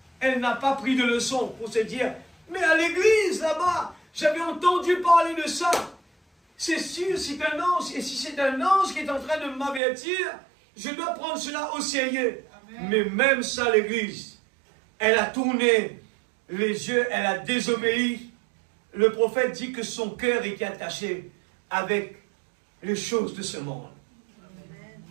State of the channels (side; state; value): left; drops out; at 9.8 s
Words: elle n'a pas pris de leçon pour se dire, mais à l'église là-bas, j'avais entendu parler de ça. C'est sûr, c'est un ange. Et si c'est un ange qui est en train de m'avertir, je dois prendre cela au sérieux. Amen. Mais même ça, l'église, elle a tourné les yeux, elle a désobéi. Le prophète dit que son cœur était attaché avec les choses de ce monde. Amen.